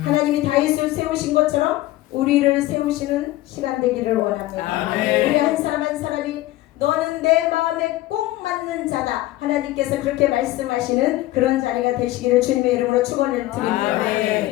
다윗을 세우신 것처럼 우리를 세우시는 시간 되기를 원합니다. 우리 한 사람 한 사람이 너는 내 마음에 꼭 맞는 자다. 하나님께서 그렇게 말씀하시는 그런 자리가 되시기를 주님의 이름으로 축원을 드립니다.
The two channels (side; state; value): right; quieter; 16.8 dB